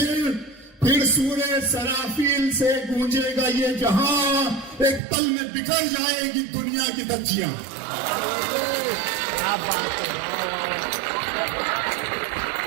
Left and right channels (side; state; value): left; drops out; at 5.0 s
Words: پھر سورہ سرافیل سے گونجے گا یہ جہاں، ایک پل میں بکھر جائے گی دنیا کی دھجیاں۔